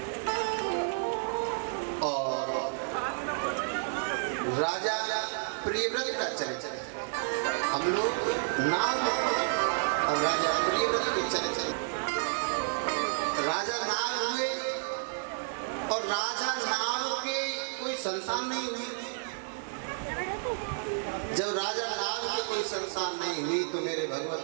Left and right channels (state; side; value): silent; left; 57 dB below the other